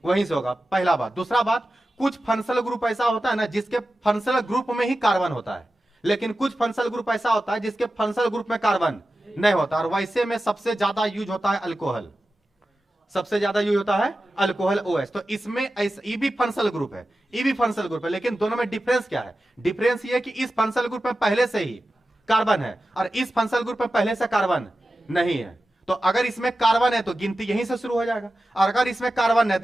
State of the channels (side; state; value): both; normal; correlation 0.93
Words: वहीं से होगा, पहला बात। दूसरा बात, कुछ फंक्शनल ग्रुप ऐसा होता है ना जिसके फंक्शनल ग्रुप में ही कार्बन होता है, लेकिन कुछ फंक्शनल ग्रुप ऐसा होता है जिसके फंक्शनल ग्रुप में कार्बन नहीं होता। और वैसे में सबसे ज्यादा यूज होता है अल्कोहल, सबसे ज्यादा यूज होता है अल्कोहल OH। तो इसमें ये भी फंक्शनल ग्रुप है, ये भी फंक्शनल ग्रुप है, लेकिन दोनों में डिफरेंस क्या है? डिफरेंस ये है कि इस फंक्शनल ग्रुप में पहले से ही कार्बन है और इस फंक्शनल ग्रुप में पहले से कार्बन नहीं है। तो अगर इसमें कार्बन है तो गिनती यहीं से शुरू हो जाएगा, और अगर इसमें कार्बन है